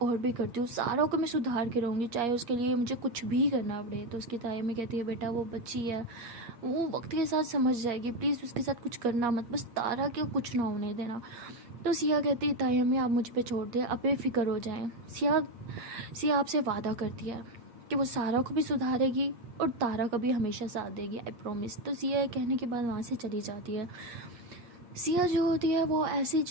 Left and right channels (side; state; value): left; late; 8.5 ms